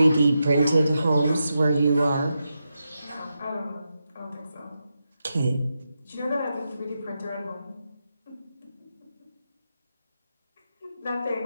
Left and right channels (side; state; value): both; inverted; correlation -0.87